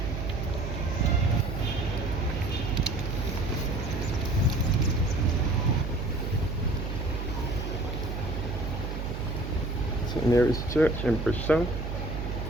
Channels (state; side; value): noise; right; hum, 4 dB below the sound